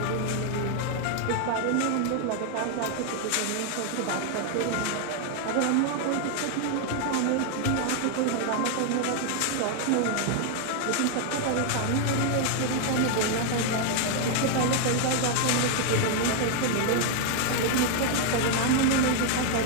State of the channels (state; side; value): different; both; correlation 0.00